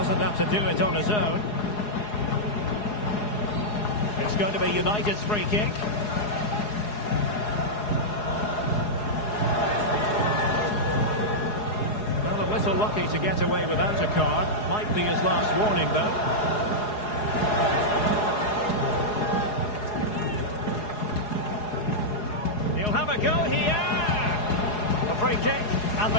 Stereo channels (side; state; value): right; late; 4.8 ms